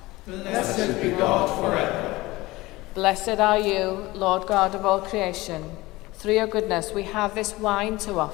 Blessed be God forever. Blessed are you, Lord God of all creation. Through your goodness we have this wine to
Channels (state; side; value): quieter; right; 20.0 dB